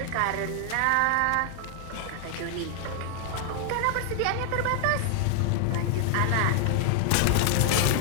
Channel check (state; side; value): different; both; correlation 0.00